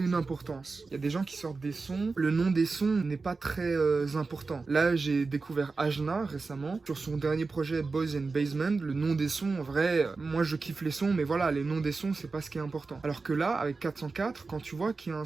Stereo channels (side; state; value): left; quieter; 4.1 dB